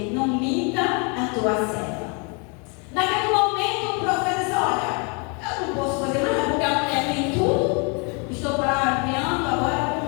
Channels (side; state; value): right; quieter; 34.2 dB